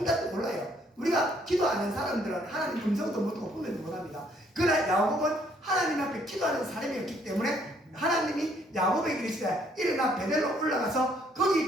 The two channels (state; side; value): normal; both; correlation 0.66